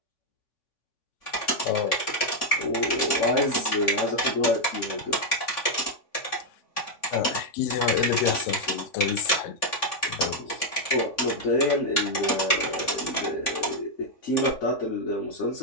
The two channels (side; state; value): right; late; 3.5 ms